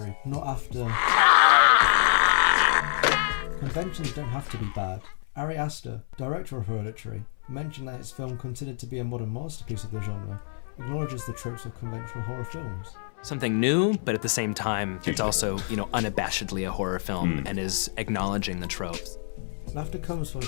not after... Conventions don't have to be bad. Ari Aster, director of Hereditary, mentioned that his film, considered to be a modern masterpiece of the genre, acknowledges the tropes of conventional horror films. Something new, but at the same time, it's also, unabashedly a horror film and is acknowledging the tropes. Laughter comes from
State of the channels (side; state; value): right; silent; 60 dB below the other